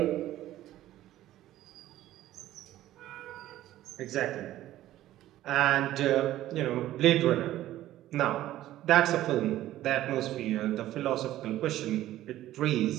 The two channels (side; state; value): left; quieter; 14.1 dB